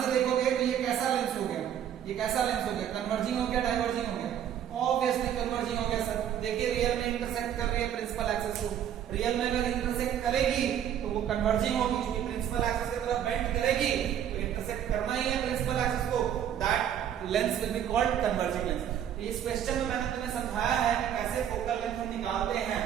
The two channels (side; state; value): left; quieter; 9.9 dB